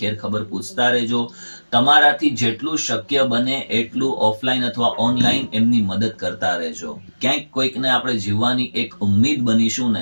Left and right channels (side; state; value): both; inverted; correlation -1.00